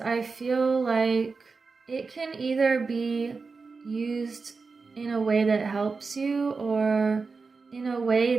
feel like it can either be used in a way that helps you, or in a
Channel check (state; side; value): quieter; left; 4.5 dB